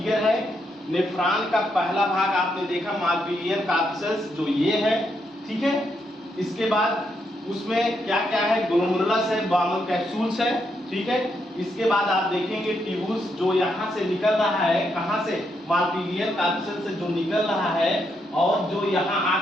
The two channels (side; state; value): both; normal; correlation 0.79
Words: है। नेफ्रॉन का पहला भाग आपने देखा मालपीजियन कार्पसेल्स, जो ये है, ठीक है। इसके बाद उसमें क्या क्या है? ग्लोमेरुलस है, बॉमेल कैप्सूल्स है, ठीक है। इसके बाद आप देखेंगे ट्यूब्यूल्स जो यहाँ से निकल रहा है, कहाँ से? मालपीजियन कार्पसेल्स से जो निकल रहा है और जो यहाँ